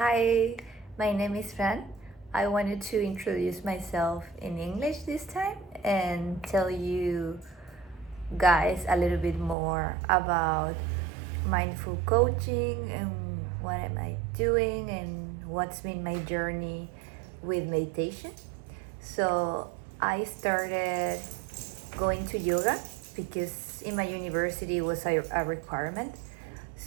my name is Fran. I wanted to introduce myself in English this time and tell you guys a little bit more about mindful coaching and what am I doing and what's been my journey with meditation. So, I started going to yoga because in my university it was a requirement.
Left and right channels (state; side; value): drops out; left; at 9.6 s